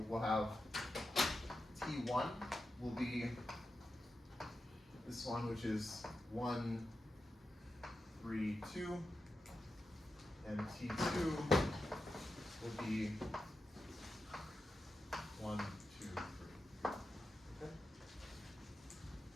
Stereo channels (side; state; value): both; normal; correlation 0.89